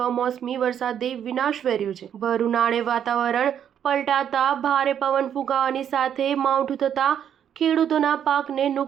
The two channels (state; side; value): quieter; left; 9.2 dB